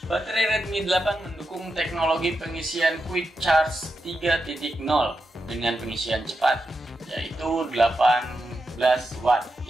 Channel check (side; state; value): both; normal; correlation 0.87